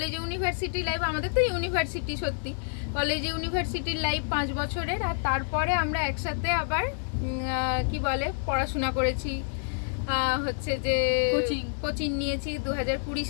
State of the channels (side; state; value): right; silent; digital silence